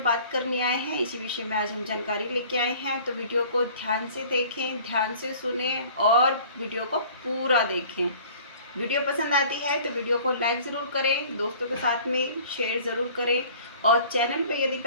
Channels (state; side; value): inverted; both; correlation -0.49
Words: करने आए हैं, इसी विषय में आज हम जानकारी लेके आए हैं। तो वीडियो को ध्यान से देखें, ध्यान से सुने और वीडियो को पूरा देखें। वीडियो पसंद आती है तो वीडियो को लाइक ज़रूर करें, दोस्तों के साथ में शेयर ज़रूर करें, और चैनल पे यदि